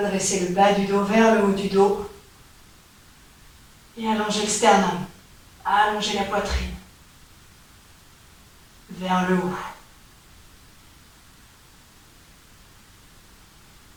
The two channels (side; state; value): both; identical; correlation 1.00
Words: le bas du dos vers le haut du dos. Et allongez le sternum. Allongez la poitrine. Vers le haut.